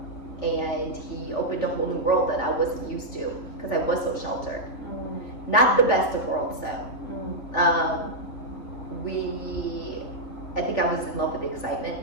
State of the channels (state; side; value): late; right; 3.4 ms